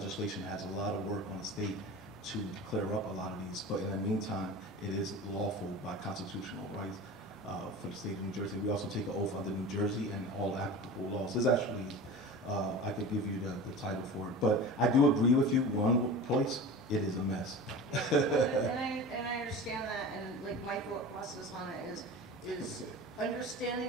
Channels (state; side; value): normal; both; correlation 0.33